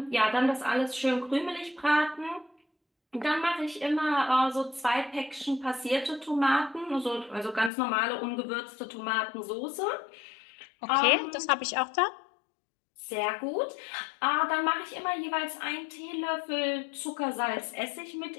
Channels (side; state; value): right; drops out; at 7.7 s